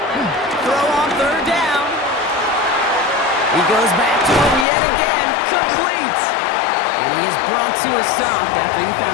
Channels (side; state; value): right; drops out; at 4.7 s